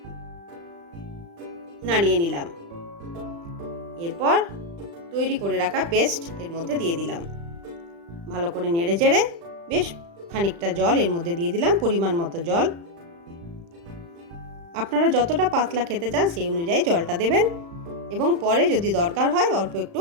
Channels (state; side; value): late; left; 35 ms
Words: নাড়িয়ে নিলাম। এরপর তৈরি করে রাখা পেস্ট এর মধ্যে দিয়ে দিলাম। ভালো করে নেড়ে চেড়ে বেশ খানিকটা জল এর মধ্যে দিয়ে দিলাম, পরিমাণ মতো জল। আপনারা যতটা পাতলা খেতে চান সেই অনুযায়ী জলটা দেবেন এবং পরে যদি দরকার হয় অল্প একটু